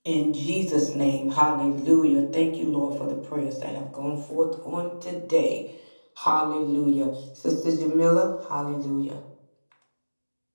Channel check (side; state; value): both; inverted; correlation -1.00